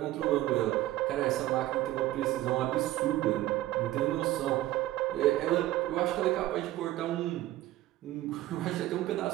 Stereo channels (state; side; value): quieter; left; 15.5 dB